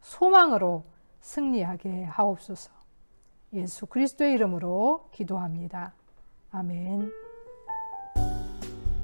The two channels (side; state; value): both; inverted; correlation -1.00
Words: 소망으로 승리하게 하옵소서. 예수 그리스도의 이름으로 기도합니다. 아멘.